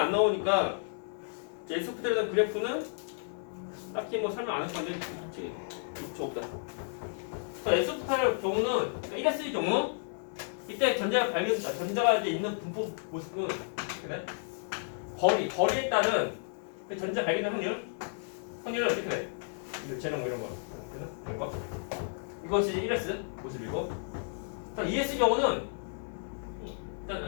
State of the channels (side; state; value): right; silent; digital silence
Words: 나오니까 S 오비탈에 대한 그래프는 딱히 뭐 설명 안 할 건데 책이 없다. S 오비탈의 경우는 1S의 경우 이때 전자가 이제 있는 분포 모습은 그래? 거리에 따른 그 전자 발견된 확률은 어떻게 돼? 재능 뭐 이런 거, 이런 거. 이것이 1S 모습이고, 2S 경우는